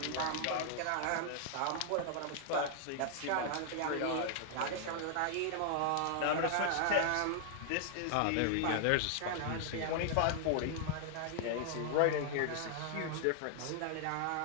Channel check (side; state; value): both; different; correlation 0.00